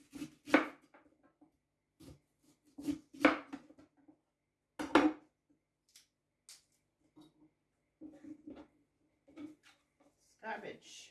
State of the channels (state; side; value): identical; both; correlation 1.00